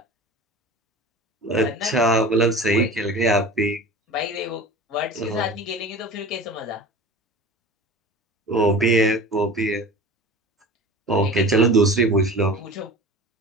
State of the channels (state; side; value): normal; both; correlation 0.37